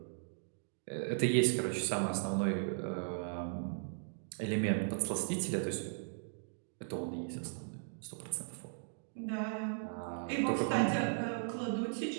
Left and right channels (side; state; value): left; silent; digital silence